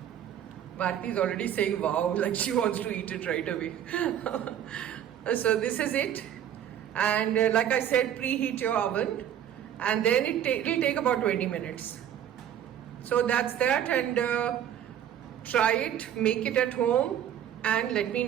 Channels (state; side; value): quieter; left; 10.2 dB